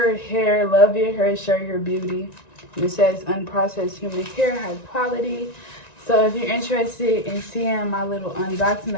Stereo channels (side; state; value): right; late; 1.9 ms